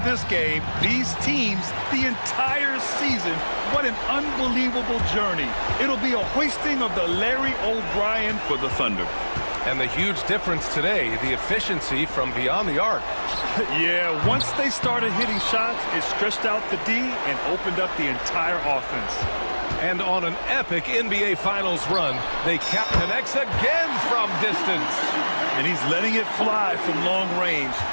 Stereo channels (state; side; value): inverted; both; correlation -1.00